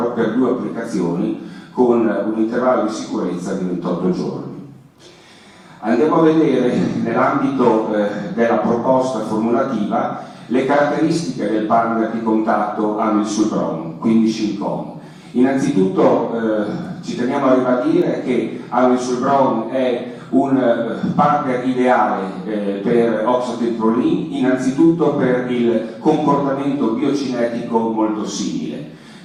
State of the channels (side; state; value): both; identical; correlation 1.00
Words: per 2 applicazioni con un intervallo di sicurezza di 28 giorni. Andiamo a vedere nell'ambito della proposta formulativa le caratteristiche del partner di contatto amisulbron, quindi Shincon. Innanzitutto ci teniamo a ribadire che amisulbron è un partner ideale per oxatebiprolin, innanzitutto per il comportamento biocinetico molto simile.